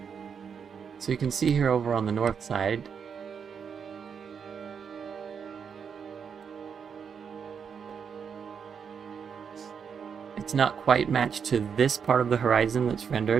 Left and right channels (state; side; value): quieter; left; 6.8 dB